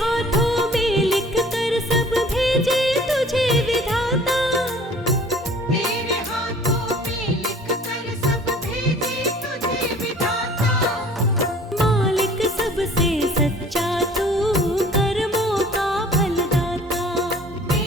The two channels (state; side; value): normal; both; correlation 0.50